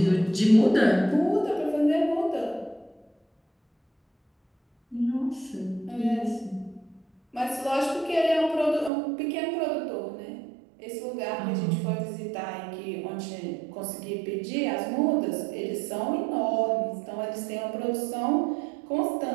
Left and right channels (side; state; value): left; drops out; at 8.9 s